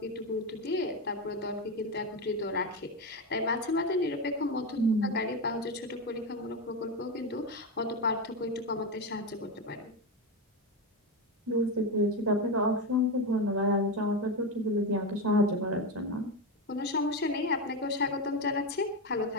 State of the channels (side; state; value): both; normal; correlation 0.14